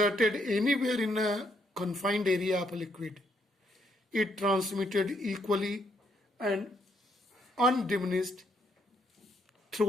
anywhere in a confined area of a liquid, it transmitted equally and undiminished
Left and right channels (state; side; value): normal; both; correlation 0.73